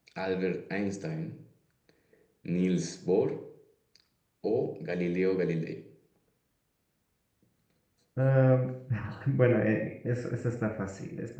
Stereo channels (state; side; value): identical; both; correlation 1.00